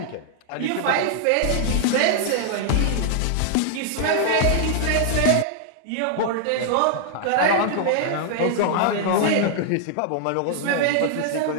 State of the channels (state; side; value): different; both; correlation -0.01